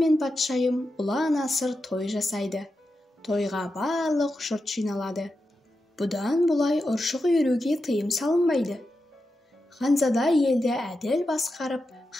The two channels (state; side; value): normal; both; correlation 0.89